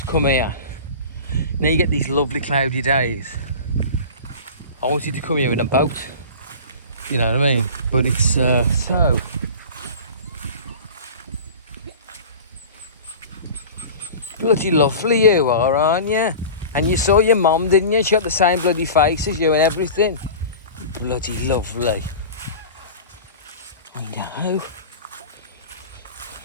come here. Now you get these lovely cloudy days. I wanted to come here in a boat, you know what I mean? But it's so bloody lovely you are, aren't you? And you saw your mum, didn't you? She got the same bloody face as you and everything. Bloody lovely. I know.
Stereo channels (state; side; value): inverted; both; correlation -0.35